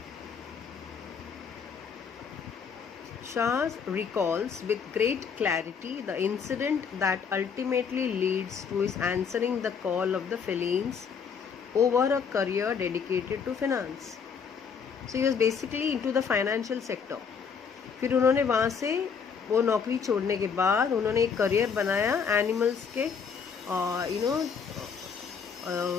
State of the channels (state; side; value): quieter; right; 6.3 dB